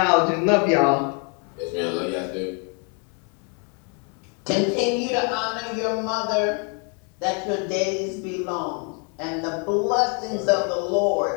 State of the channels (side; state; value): right; quieter; 37.3 dB